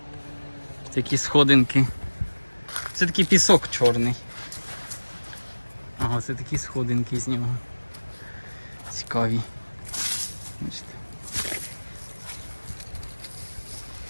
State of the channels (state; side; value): inverted; both; correlation -1.00